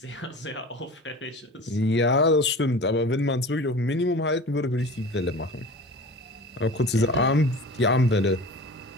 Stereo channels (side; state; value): both; normal; correlation 0.37